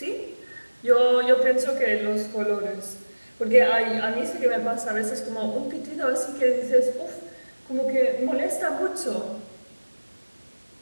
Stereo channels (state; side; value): inverted; both; correlation -1.00